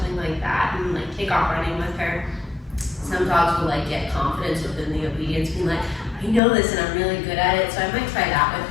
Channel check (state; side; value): drops out; right; at 6.4 s